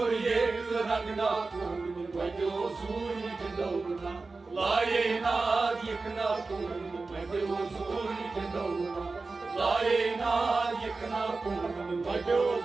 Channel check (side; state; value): left; quieter; 3.8 dB